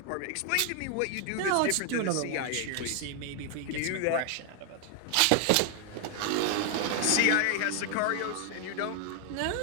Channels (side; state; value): both; different; correlation 0.00